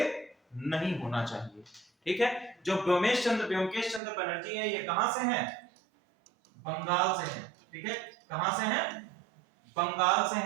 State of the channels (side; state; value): left; drops out; at 4.0 s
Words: नहीं होना चाहिए, ठीक है। जो व्योमकेश चंद्र बनर्जी है, ये कहां से हैं, बंगाल से हैं, ठीक है। कहां से हैं, बंगाल से